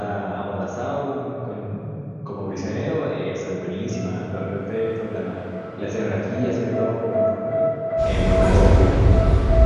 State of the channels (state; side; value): identical; both; correlation 1.00